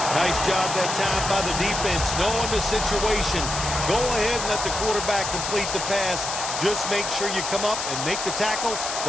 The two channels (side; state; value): left; noise; hiss, 4 dB below the sound